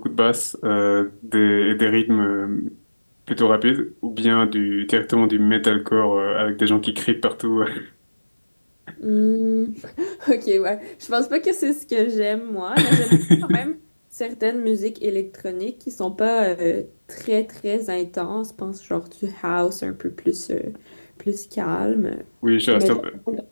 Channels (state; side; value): inverted; both; correlation -1.00